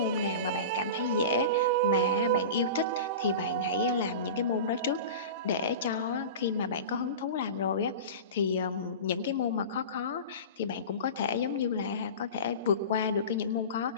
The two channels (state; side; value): inverted; both; correlation -0.30